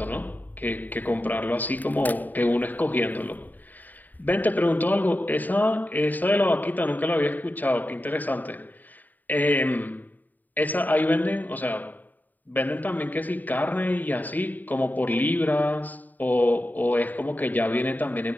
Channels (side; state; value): right; late; 0.085 ms